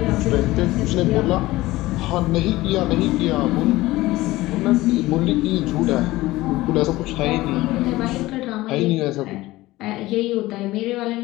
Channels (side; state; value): right; quieter; 18.2 dB